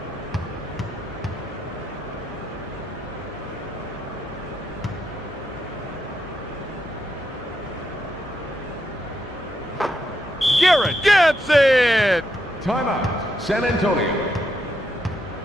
Garrett gets it! Timeout. San Antonio.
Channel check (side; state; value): both; normal; correlation 0.81